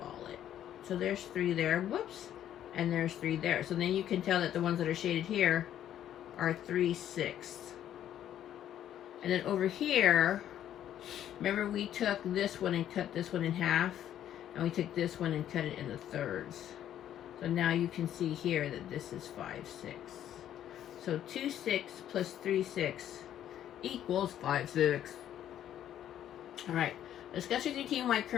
it. So there's 3 there, whoops, and there's 3 there. So then you can tell that the ones that are shaded here are 3 6ths. And then over here, remember we took this one and cut this one in half, and we took this one and cut it into thirds. So now you can see here that this is 5 6. So 2 6 plus 3 6 equals 5 6. All right, Discuss with your team why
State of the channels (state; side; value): quieter; right; 11.0 dB